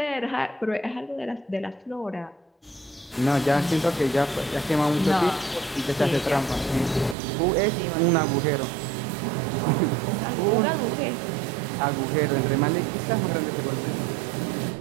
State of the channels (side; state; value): left; drops out; at 7.2 s